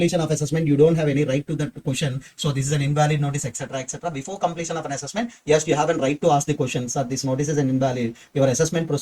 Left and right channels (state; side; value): identical; both; correlation 1.00